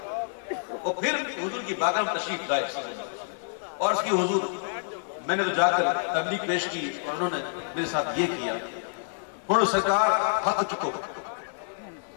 اور پھر حضور کی بارگاہ میں تشریف لائے اور اس کی حضور میں نے تو جا کر تبلیغ پیش کی اور انہوں نے میرے ساتھ یہ کیا. ہوں سرکار ہاتھ چکو،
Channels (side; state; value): right; silent; 59 dB below the other